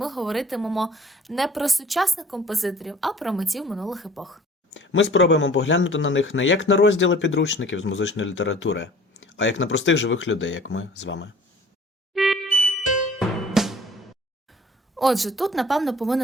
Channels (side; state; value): both; normal; correlation 0.50